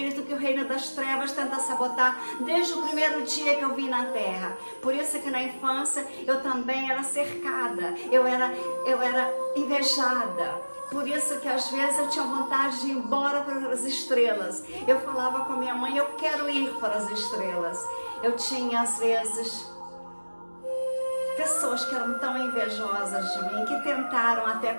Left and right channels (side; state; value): both; inverted; correlation -1.00